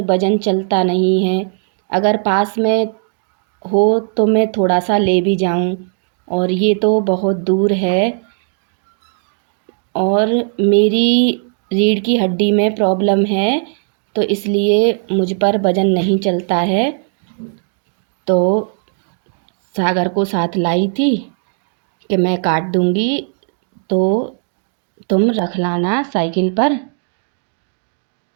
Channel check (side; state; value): left; silent; 57 dB below the other